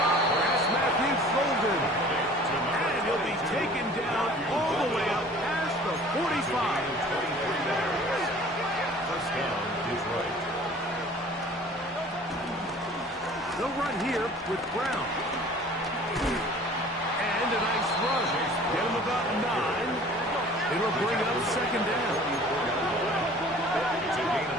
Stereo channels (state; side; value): normal; both; correlation 0.48